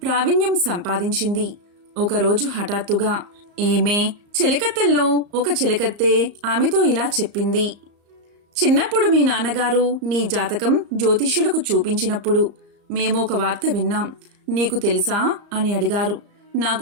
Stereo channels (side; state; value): left; late; 34 ms